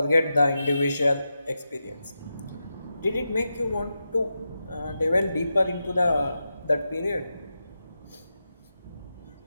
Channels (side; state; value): both; inverted; correlation -0.89